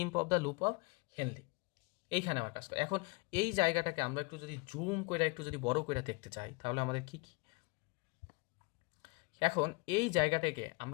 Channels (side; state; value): right; quieter; 28.2 dB